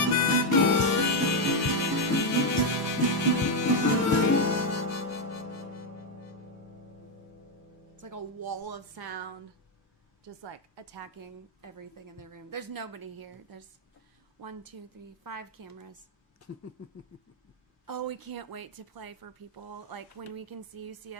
It's like a wall of sound, just like attacking everything in the room. There's nobody here. There's 1, 2, 3, 5 cameras. Oh, we can't wait to play for people. Like when we can see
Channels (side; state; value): both; normal; correlation 0.03